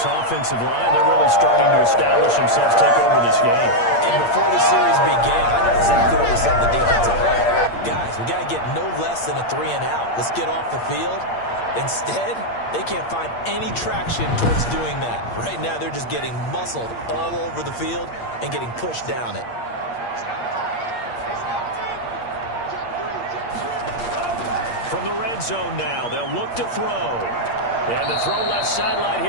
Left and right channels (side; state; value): right; late; 8.6 ms